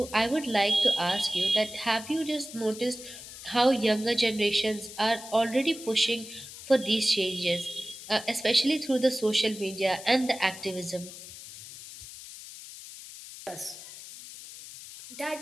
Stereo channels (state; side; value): noise; left; hiss, 14 dB below the sound